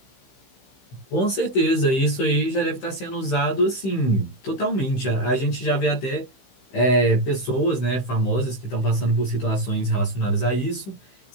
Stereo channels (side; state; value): right; late; 15 ms